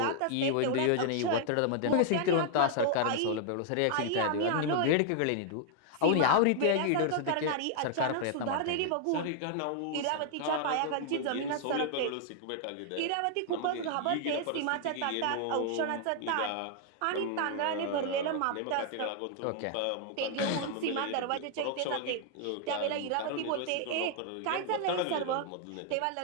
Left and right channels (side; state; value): both; different; correlation 0.00